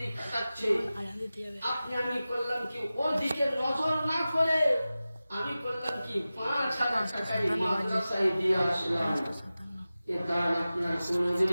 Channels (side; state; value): both; inverted; correlation -0.95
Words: কাটাচ্ছে। আপনি আমি করলাম কি, ওর দিকে নজর না করে আমি করলাম কি, 5,000 টাকায় মাদ্রাসায় দিয়ে আসলাম। এটা আপনার